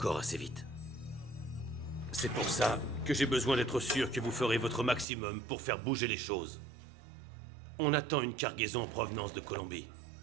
assez vite. C'est pour ça que j'ai besoin d'être sûr que vous ferez votre maximum pour faire bouger les choses. On attend une cargaison en provenance de Colombie.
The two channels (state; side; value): drops out; left; at 5.1 s